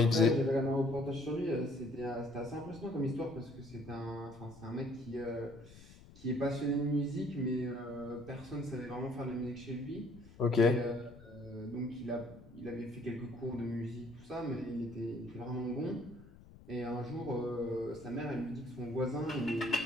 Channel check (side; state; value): left; noise; rumble, 20 dB below the sound